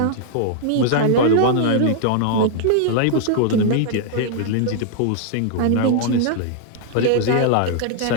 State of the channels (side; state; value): both; different; correlation -0.01